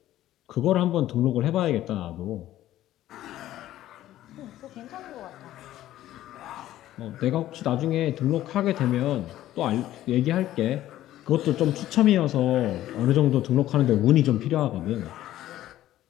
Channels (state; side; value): quieter; right; 13.7 dB